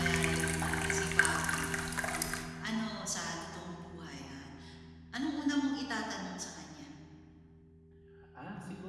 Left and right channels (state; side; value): identical; both; correlation 1.00